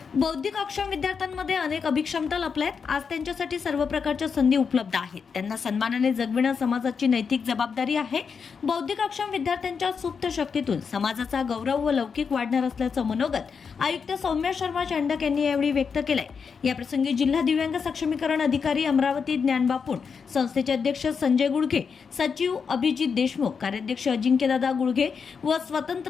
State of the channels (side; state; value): right; quieter; 6.0 dB